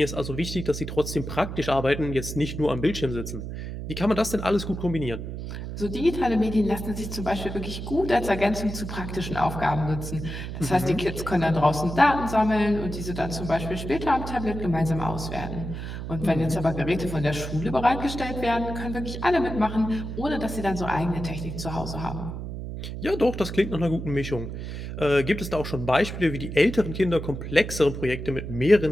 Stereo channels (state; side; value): noise; right; hum, 7 dB below the sound